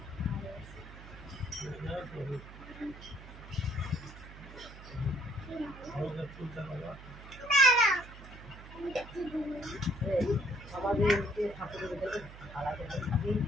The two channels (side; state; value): right; noise; hum, 15 dB below the sound